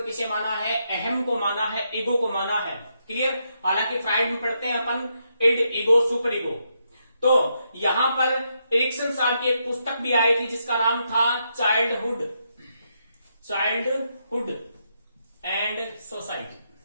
किसे माना है? अहम को माना है, ईगो को माना है। क्लियर? हालांकि फ्राइड में पढ़ते हैं अपन इड, ईगो, सुपर ईगो। तो यहां पर एरिक्सन साहब की एक पुस्तक भी आई थी जिसका नाम था चाइल्डहुड एंड सोसाइटी।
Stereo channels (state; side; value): inverted; both; correlation -0.80